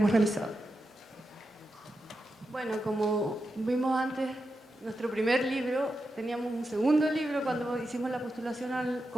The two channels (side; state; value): both; normal; correlation 0.88